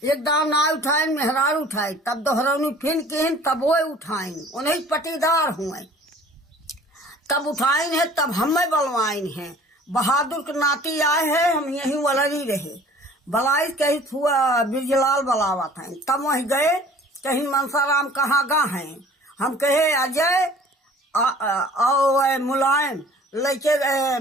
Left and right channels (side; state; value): both; normal; correlation 0.49